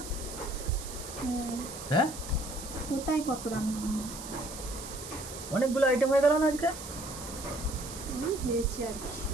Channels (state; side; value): noise; right; hiss, 11 dB below the sound